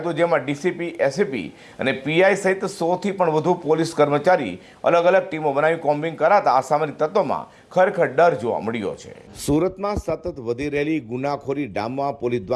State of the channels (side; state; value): both; identical; correlation 1.00